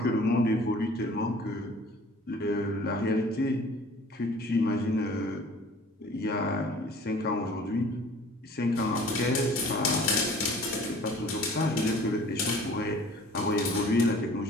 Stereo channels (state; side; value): normal; both; correlation 0.49